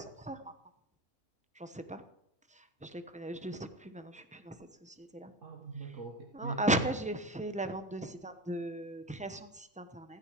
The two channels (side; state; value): both; normal; correlation 0.24